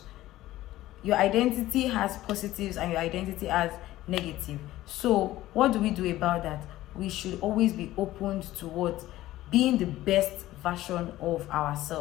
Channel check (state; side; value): quieter; right; 15.6 dB